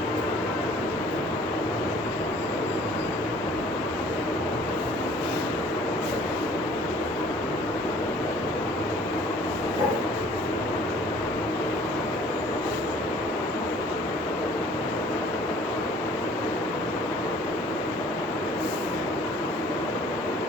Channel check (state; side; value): normal; both; correlation 0.53